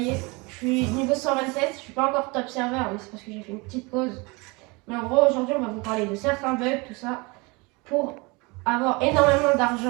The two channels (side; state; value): left; quieter; 26.9 dB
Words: je suis niveau 127, je suis pas encore top serveur mais c'est parce que j'ai fait une petite pause. Mais en gros aujourd'hui on va vous parler de certains bugs, tout ça, pour avoir énormément